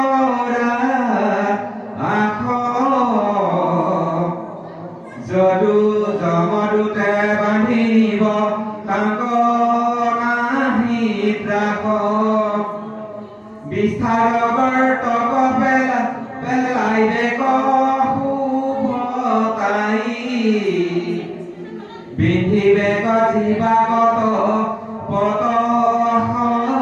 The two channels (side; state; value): both; identical; correlation 1.00